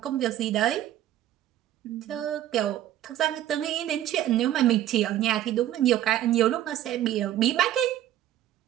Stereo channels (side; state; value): left; quieter; 12.6 dB